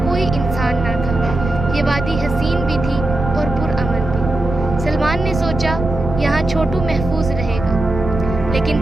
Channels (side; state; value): right; noise; rumble, 6 dB below the sound